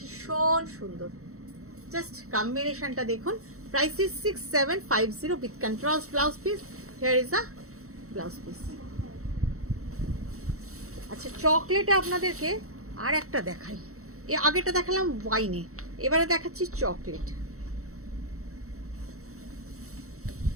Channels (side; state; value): left; late; 0.64 ms